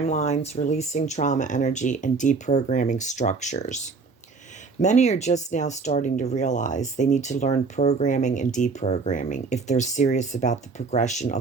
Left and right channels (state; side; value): quieter; left; 4.4 dB